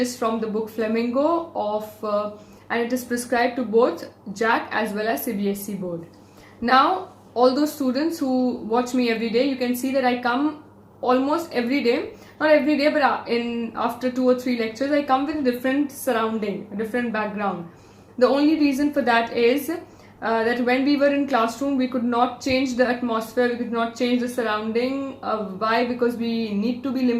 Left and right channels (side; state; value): both; identical; correlation 1.00